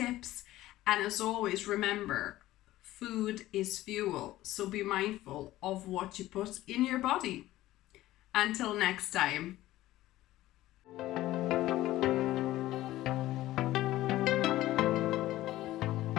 And as always, remember, food is fuel, so be mindful of what you put in your body. Until next time.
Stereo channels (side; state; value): right; quieter; 15.7 dB